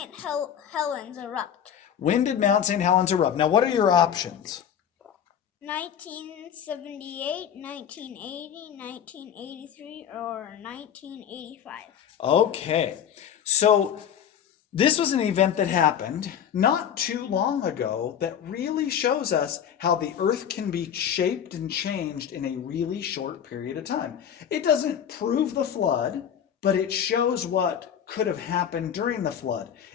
Helens erupt? When did Mount St. Helens erupt? Now, what are your options? 1978, 1980, 1983, or 1985? Okay, so this was an event that happened not too long ago that really shows us how the earth can be shaped and changed in a really short period of time. It doesn't prove the flood, but it shows what could have happened during the flood.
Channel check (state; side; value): quieter; right; 8.9 dB